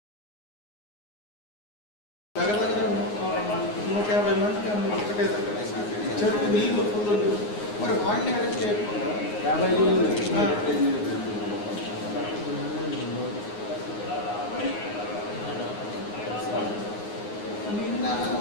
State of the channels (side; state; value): right; late; 9.6 ms